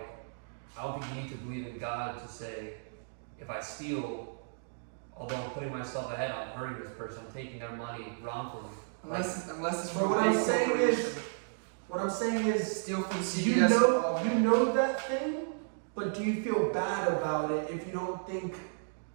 I don't think you need to believe in God to say, if I steal, although I'm putting myself ahead, I'm hurting this person, I'm taking their money wrongfully. Unless it's But from what a I'm big saying corporation. is, what I'm saying is, Steal from you CVS. know that thing, but do you feel bad about it if you don't think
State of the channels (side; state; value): left; silent; digital silence